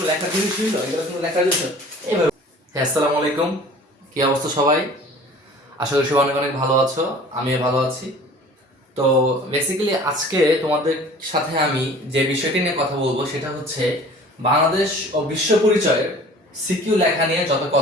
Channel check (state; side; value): normal; both; correlation 0.46